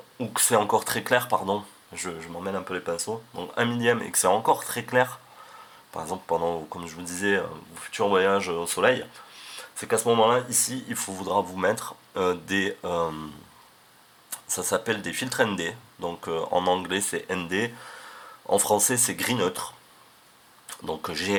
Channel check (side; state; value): both; identical; correlation 1.00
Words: ou que c'est encore très clair, pardon, je m'emmène un peu les pinceaux, donc 1 millième et que c'est encore très clair, par exemple pendant, comme je vous disais, vos futurs voyages au soleil, c'est qu'à ce moment-là, ici, voudra vous mettre ça s'appelle des filtres ND, donc en anglais c'est ND, en français c'est gris neutre, donc